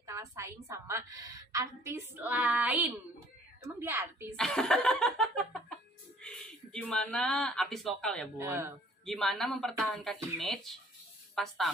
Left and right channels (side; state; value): both; normal; correlation 0.57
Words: kalah saing sama artis lain? Emang dia artis? Gimana artis lokal ya Bun? Gimana mempertahankan image pas